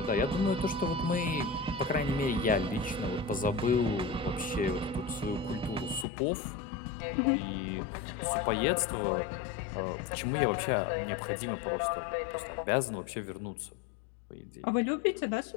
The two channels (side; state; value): right; drops out; at 6.1 s